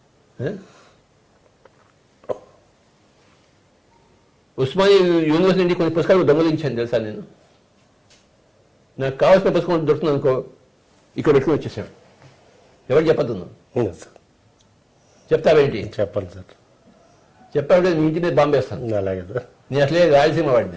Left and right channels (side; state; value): both; identical; correlation 1.00